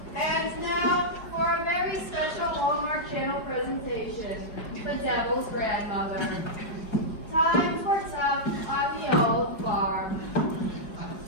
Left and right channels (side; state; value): right; late; 4.6 ms